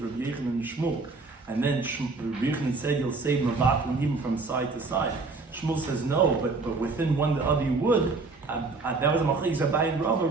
Rabbi Yochanan and Shmuel, and then Rabbi Yochanan said you'll say mevatel even from side to side. Shmuel says no, but within one the other you would. That was a machlekes Abaye and Rava.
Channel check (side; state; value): left; quieter; 3.9 dB